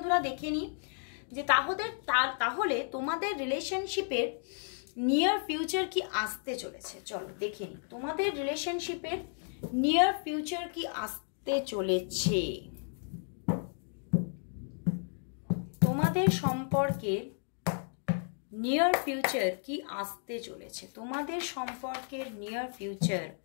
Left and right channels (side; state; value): right; silent; 56 dB below the other